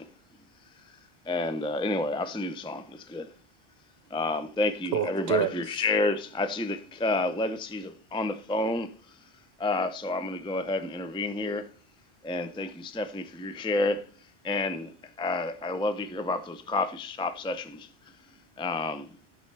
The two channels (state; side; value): normal; both; correlation 0.39